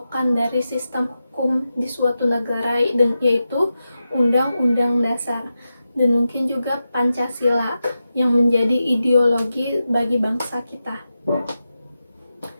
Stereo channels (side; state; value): both; inverted; correlation -0.90